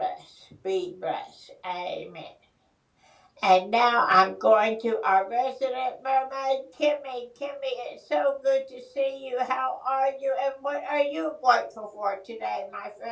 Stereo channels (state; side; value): identical; both; correlation 1.00